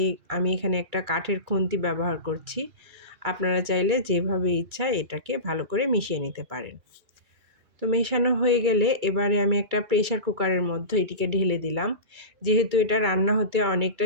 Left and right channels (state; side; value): late; left; 2.3 ms